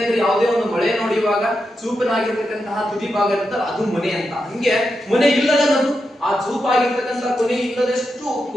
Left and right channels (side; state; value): both; normal; correlation 0.87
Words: ಯಾವುದೇ ಒಂದು ಮಳೆ ನೋಡಿಯುವಾಗ ಚೂಪನಾಗಿರ್ತಕ್ಕಂತಹ ತುದಿ ಭಾಗ ಇರುತ್ತಲ್ಲ, ಅದು ಮೊನೆ ಅಂತ. ಹಂಗೆ ಮೊನೆ ಇಲ್ಲದ ನಗು, ಆ ಚೂಪಾಗಿರ್ತಕ್ಕಂಥ ಕೊನೆ ಇಲ್ಲದಷ್ಟು